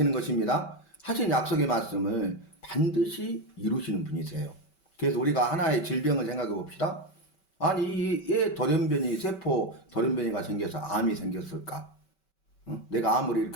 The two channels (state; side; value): late; right; 5.2 ms